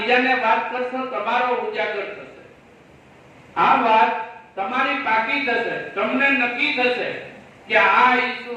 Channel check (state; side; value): identical; both; correlation 1.00